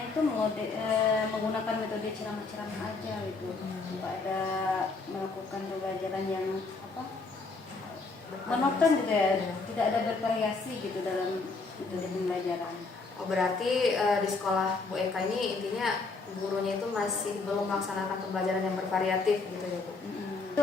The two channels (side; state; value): right; quieter; 3.9 dB